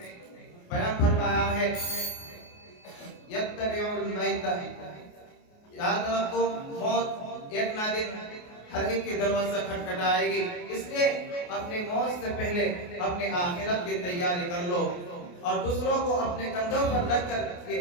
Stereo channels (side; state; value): right; late; 28 ms